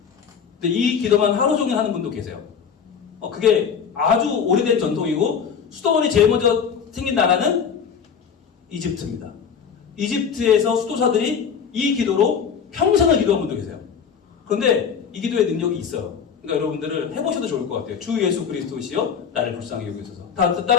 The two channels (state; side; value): quieter; right; 6.9 dB